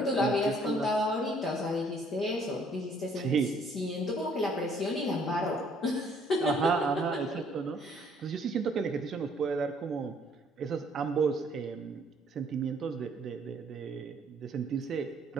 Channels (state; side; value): normal; both; correlation 0.62